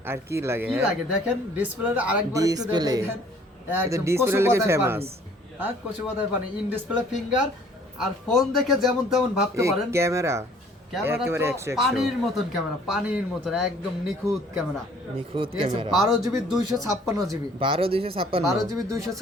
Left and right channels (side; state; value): both; normal; correlation 0.56